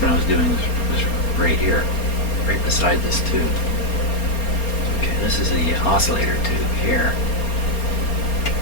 I was doing was right here, right beside this tube. Okay, this is the oscillator tube here.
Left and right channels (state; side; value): late; right; 4.3 ms